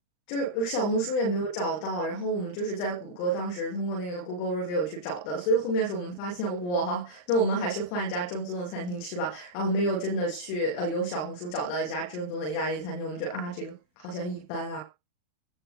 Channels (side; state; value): right; late; 39 ms